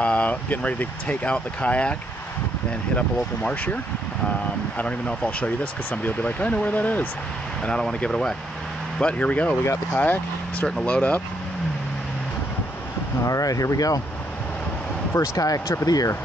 Getting ready to take out the kayak and hit up a local marsh here. I don't even know if I'll show you this because somebody will be like, I know where that is, and I don't want to give it away. But here we go. We got the kayak starting to load up. All right, here we go. First kayak trip of the year.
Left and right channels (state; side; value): normal; both; correlation 0.74